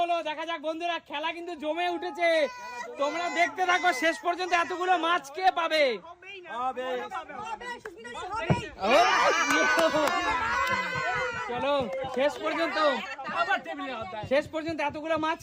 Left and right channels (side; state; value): both; identical; correlation 1.00